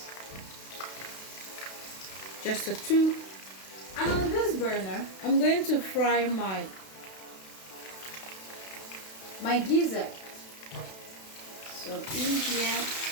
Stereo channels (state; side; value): late; right; 32 ms